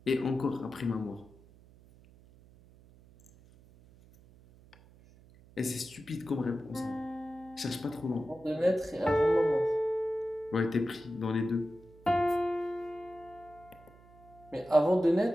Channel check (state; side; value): noise; right; hum, 25 dB below the sound